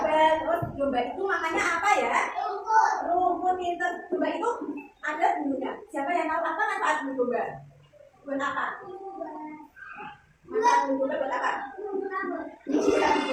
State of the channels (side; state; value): both; identical; correlation 1.00